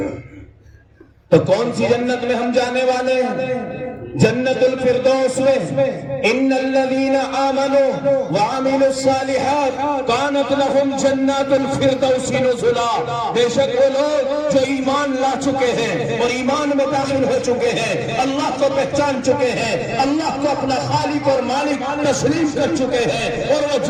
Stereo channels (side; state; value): both; identical; correlation 1.00